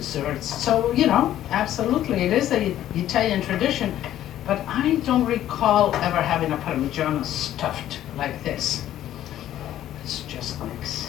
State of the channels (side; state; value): right; quieter; 12.3 dB